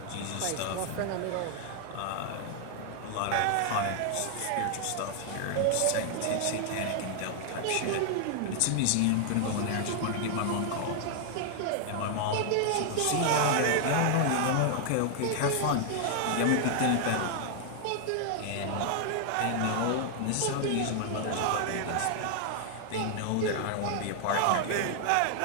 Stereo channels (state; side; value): different; both; correlation 0.00